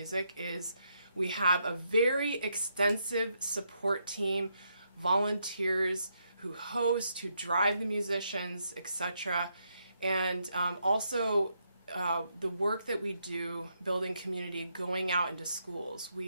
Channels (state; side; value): inverted; both; correlation -0.78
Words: is we have a very extensive support team, volunteers who host, who drive the musicians, etc. And also the work that we do building community, going out into schools.